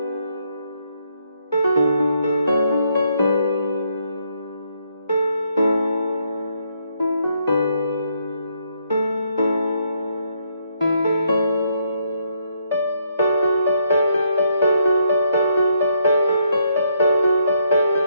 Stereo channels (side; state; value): both; inverted; correlation -0.74